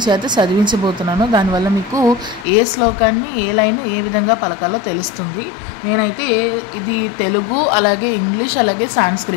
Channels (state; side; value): drops out; right; at 2.5 s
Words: చేత చదివించబోతున్నాను. దానివల్ల మీకు ఏ శ్లోకాన్ని ఏ లైన్ ఏ విధంగా పలకాలో తెలుస్తుంది. నేనైతే ఇది తెలుగు, అలాగే ఇంగ్లీష్, అలాగే